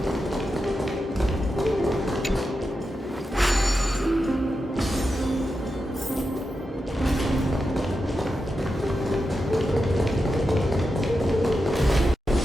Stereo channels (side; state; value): both; normal; correlation 0.89